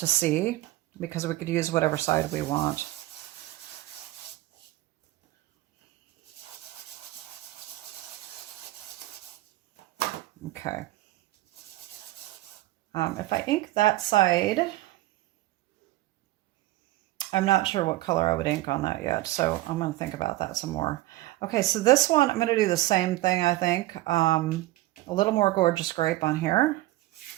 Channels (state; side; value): quieter; left; 17.4 dB